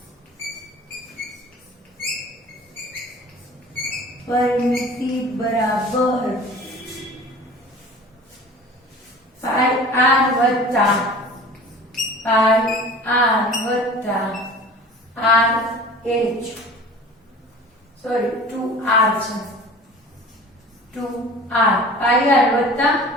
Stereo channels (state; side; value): normal; both; correlation 0.42